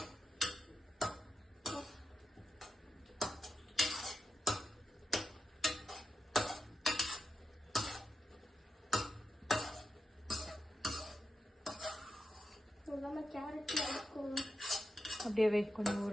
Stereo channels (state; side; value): normal; both; correlation 0.89